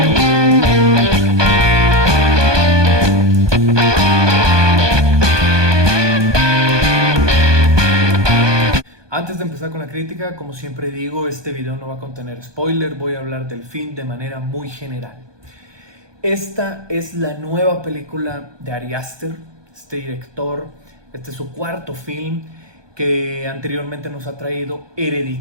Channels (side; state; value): left; late; 1.2 ms